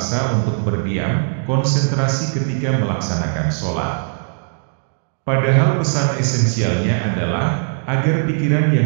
untuk berdiam, konsentrasi ketika melaksanakan sholat. Padahal pesan esensialnya adalah, agar pikiran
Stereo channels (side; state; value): left; silent; digital silence